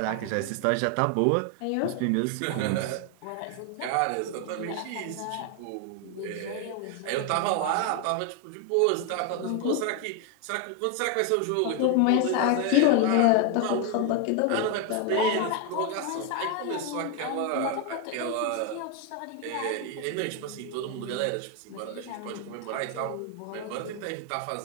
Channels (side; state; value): both; different; correlation 0.01